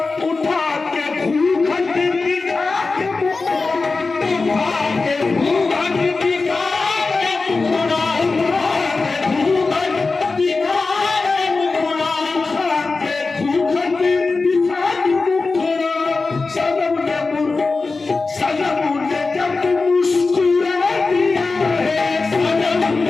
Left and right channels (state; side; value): quieter; right; 3.9 dB